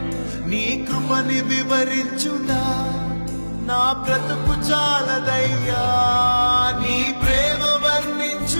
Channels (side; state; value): both; inverted; correlation -1.00